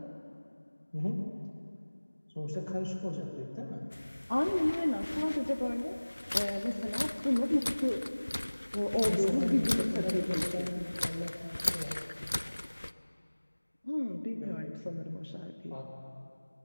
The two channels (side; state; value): both; inverted; correlation -1.00